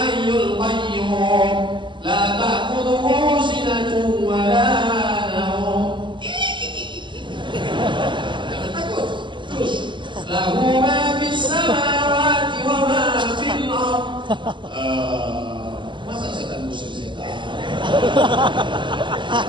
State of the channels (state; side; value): late; left; 0.23 ms